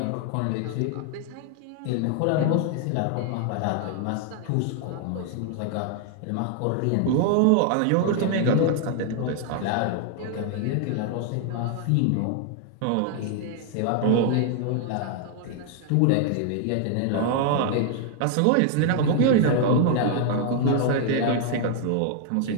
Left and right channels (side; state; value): both; different; correlation 0.00